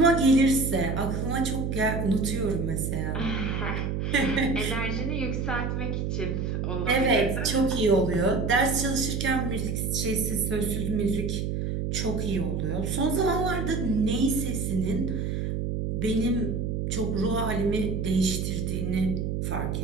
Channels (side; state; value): right; noise; hum, 1 dB below the sound